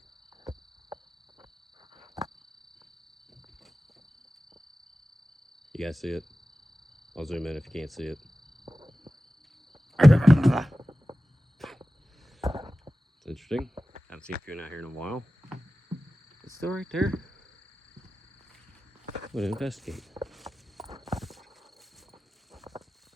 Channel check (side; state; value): both; normal; correlation 0.95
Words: You guys see it? I'll zoom in if you can't see it. It's interesting. Haven't seen Coon out here in a while. It's still right there. I'm gonna investigate.